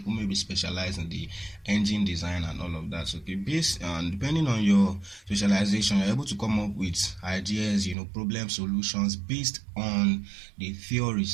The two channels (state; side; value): drops out; left; at 8.0 s